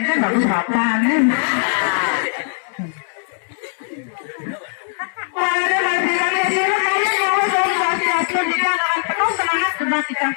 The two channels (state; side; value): silent; right; digital silence